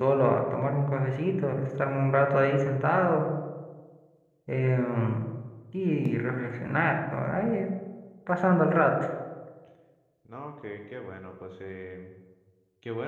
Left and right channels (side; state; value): both; identical; correlation 1.00